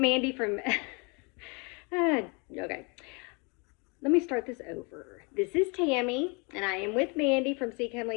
from, okay. Let me start this over. This is Tammy, and I am with Mandy from Seek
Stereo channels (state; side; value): quieter; right; 31.6 dB